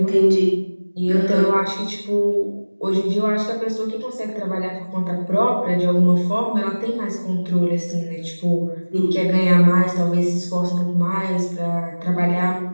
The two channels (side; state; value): both; inverted; correlation -1.00